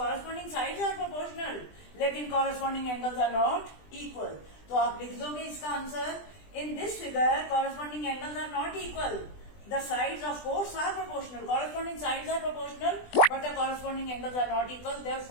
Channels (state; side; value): late; right; 20 ms